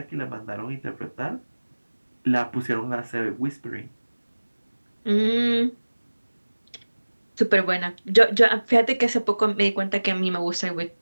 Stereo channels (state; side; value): inverted; both; correlation -1.00